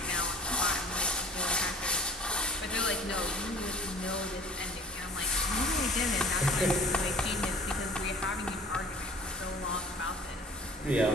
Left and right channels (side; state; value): both; normal; correlation 0.48